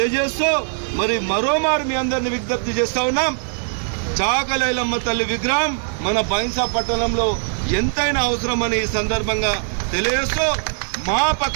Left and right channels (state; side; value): silent; left; 58 dB below the other